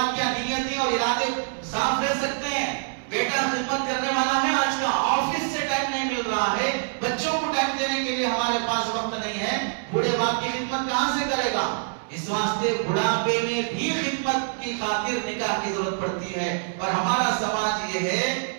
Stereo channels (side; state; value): left; silent; digital silence